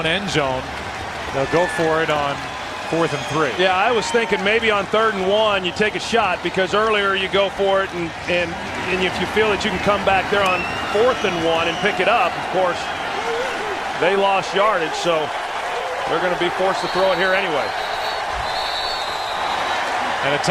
end zone, they'll go for it on 4th and 3. Yeah, I was thinking maybe on 3rd and 1 you take a shot, because earlier you go for it, and if you feel that you can come back there on 4th and 1 and pick it up, of course, they lost yardage, so they're going to be forced to throw it here anyway. And a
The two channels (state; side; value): identical; both; correlation 1.00